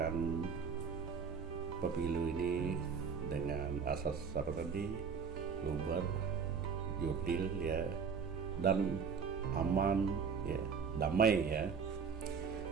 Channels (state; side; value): quieter; left; 6.1 dB